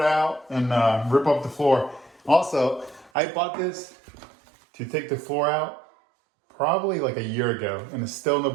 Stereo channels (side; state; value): left; drops out; at 3.1 s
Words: out, and rip up the floor. Also, I bought this to take the floor out probably like a year ago, and it's still in the